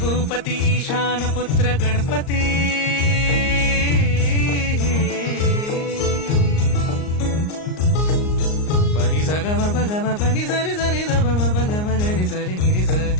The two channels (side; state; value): right; late; 38 ms